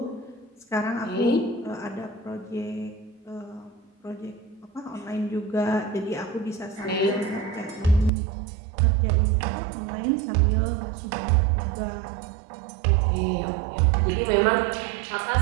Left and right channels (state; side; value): drops out; left; at 8.1 s